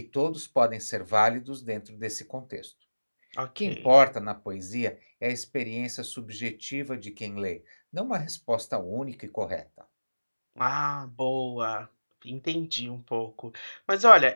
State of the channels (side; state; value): both; inverted; correlation -1.00